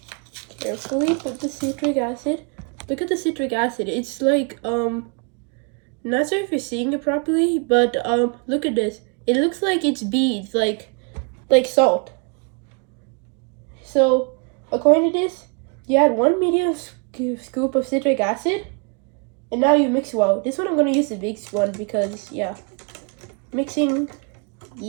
Carefully put the citric acid. Look at the citric acid. It's like, not sure if you're seeing it properly, but, look at this. It looks like it's beads, like salt. So, according to this, you add 1 medium scoop of citric acid, and now you mix well. This one I'm gonna use the big one because, yeah, mixing.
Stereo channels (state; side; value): quieter; left; 36.0 dB